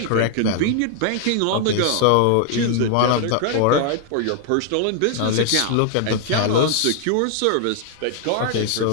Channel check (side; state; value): both; different; correlation 0.00